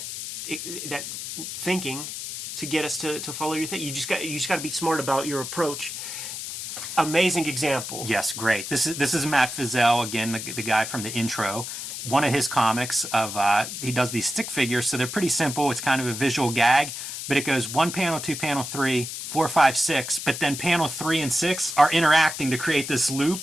thinking, to get us to follow your thing. You just got to be smart about your approach. Amazing example. Yes, great. This is Matt Fizel, again, the guy from the intro. One of his comics he does these stick figures, so they're pretty simple. It's kind of a visual gag, but it goes 1 panel, 2 panel, 3, 4, 5, 6, but then panel 3 and 6 are interacting to create this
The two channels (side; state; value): left; noise; hiss, 7 dB below the sound